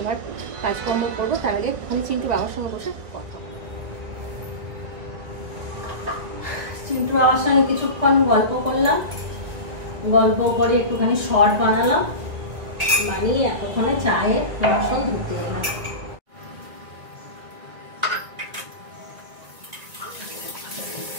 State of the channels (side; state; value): left; late; 1.8 ms